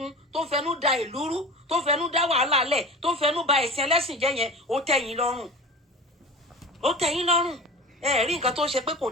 tó ń fẹnu da ìlú rú tó ń fẹnu dá wàhálà lẹ̀ tó ń fẹnu ba ẹ̀sìn ẹlẹ́sìn jẹ́ yẹn ó tẹ́yìn lọ́rùn ẹ rí nǹkan tó ń ṣe pé kò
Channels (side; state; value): both; normal; correlation 0.33